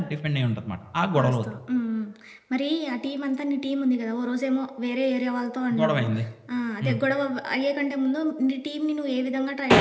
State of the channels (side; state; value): both; identical; correlation 1.00